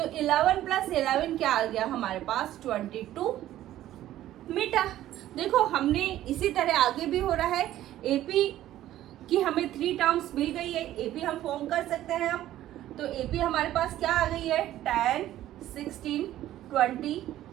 11 + 11 क्या आ गया हमारे पास? 22 मीटर। देखो, हमने इसी तरह आगे भी हो रहा है। एपी की हमें 3 टर्म्स मिल गई है, एपी हम फॉर्म कर सकते हैं अब। तो एपी हमारे पास क्या आ गई है? 10, 16, 22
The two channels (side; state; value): left; quieter; 13.5 dB